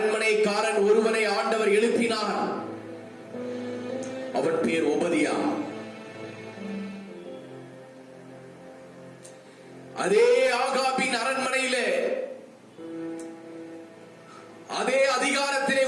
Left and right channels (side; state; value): both; identical; correlation 1.00